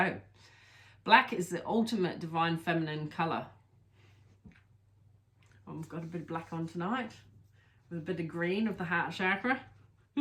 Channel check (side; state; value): both; identical; correlation 1.00